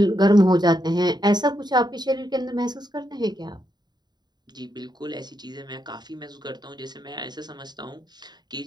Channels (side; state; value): left; late; 0.20 ms